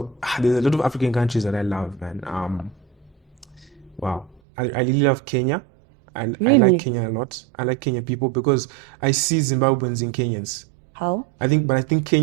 there's a lot of African countries that I love, man. I really love Kenya. I like Kenya a lot. I like Kenyan people because I see Zimbabweans in Kenyans. How? I think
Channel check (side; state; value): left; drops out; at 4.4 s